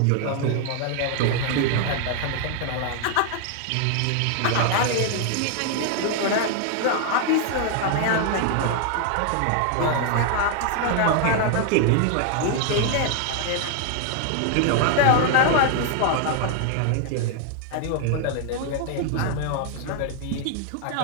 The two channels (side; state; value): both; different; correlation 0.00